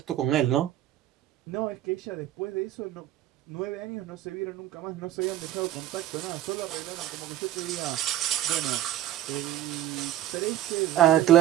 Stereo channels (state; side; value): quieter; left; 13.3 dB